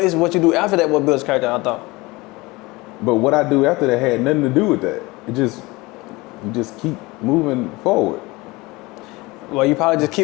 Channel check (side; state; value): right; quieter; 22.6 dB